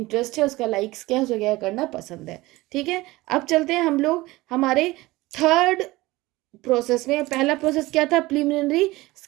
है, उसका लाइक्स क्या है, उसको क्या करना पसंद है, ठीक है। अब चलते हैं हम लोग हमारे थर्ड प्रोसेस में। पहला प्रोसेस क्या था, प्रिलिमिनरी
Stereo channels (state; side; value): quieter; left; 19.8 dB